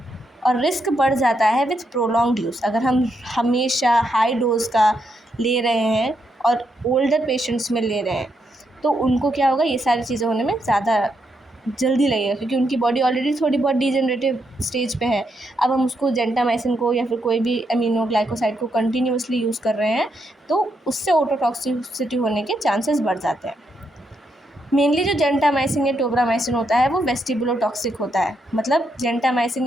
और रिस्क बढ़ जाता है विथ प्रोलॉन्ग्ड यूज़। अगर हम हमेशा हाई डोज का ले रहे हैं और ओल्डर पेशेंट्स में ले रहे हैं तो उनको क्या होगा, ये सारी चीज़ें होने में ज़्यादा जल्दी लगेगा, क्योंकि उनकी बॉडी ऑलरेडी थोड़ी बहुत डिजेनरेटिव स्टेज पे है। अब हम उसको जेंटामाइसिन को या फिर कोई भी अमीनोग्लाइकोसाइड को कंटिन्यूसली यूज़ कर रहे हैं तो उससे ऑटोटॉक्सिसिटी होने के चांसेस बढ़ जाते हैं। मेनली जो जेंटामाइसिन या टोब्रामाइसिन होता है वो वेस्टिबुलोटॉक्सिक होता है, मतलब जेंटामाइसिन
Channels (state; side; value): normal; both; correlation 0.80